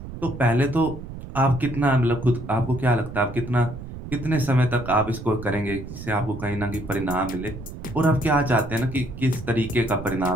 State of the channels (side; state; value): right; noise; rumble, 11 dB below the sound